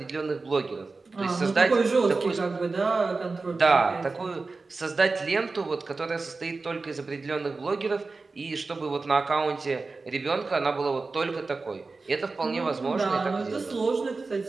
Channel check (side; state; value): left; quieter; 3.9 dB